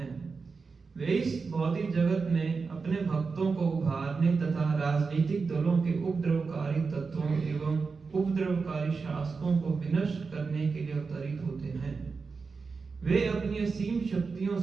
वे इस भौतिक जगत में अपने भक्तों को उभारने तथा राजनीतिक दलों के उपद्रवकारी तत्वों एवं उपद्रवकारी शासकों को विनष्ट करने के लिए अवतरित होते हैं। वे अपनी असीम शक्तियों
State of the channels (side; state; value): left; quieter; 4.7 dB